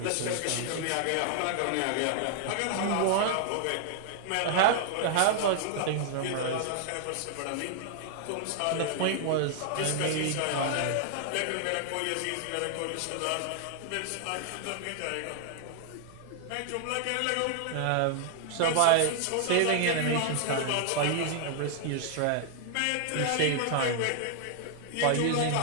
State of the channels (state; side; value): different; both; correlation 0.00